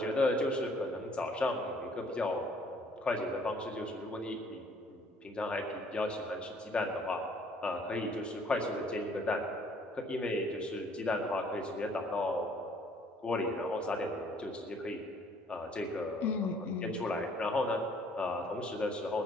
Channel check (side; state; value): both; normal; correlation 0.60